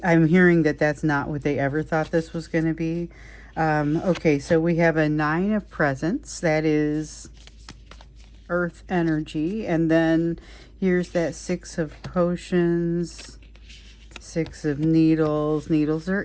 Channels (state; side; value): identical; both; correlation 1.00